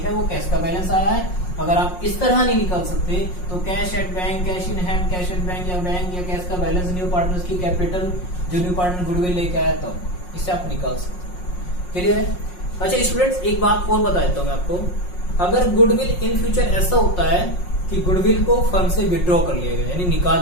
वो कैश का बैलेंस आया है। अगर आप इस तरह नहीं निकाल सकते तो cash at bank, cash in hand, cash at bank या कैश का बैलेंस, न्यू पार्टनर्स की कैपिटल, जो न्यू पार्टनर गुडविल लेके आया तब इससे आप निकाल सकते हैं। क्लियर है? अच्छा स्टूडेंट्स, एक बात और बता देता हूं मैं आपको। अगर गुडविल इन फ्यूचर ऐसा होता है कि गुडविल को फर्म से विड्रॉ कर लिया गया यानी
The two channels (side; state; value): right; late; 5.5 ms